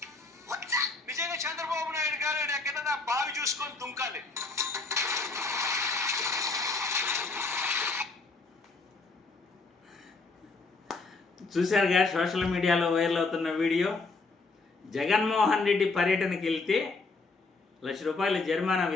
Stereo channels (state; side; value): quieter; right; 3.8 dB